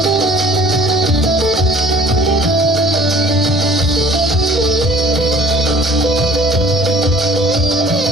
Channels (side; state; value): both; normal; correlation 0.50